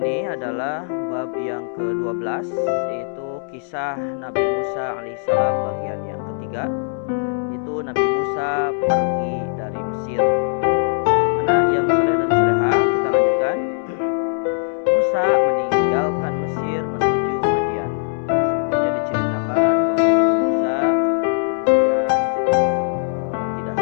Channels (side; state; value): right; silent; digital silence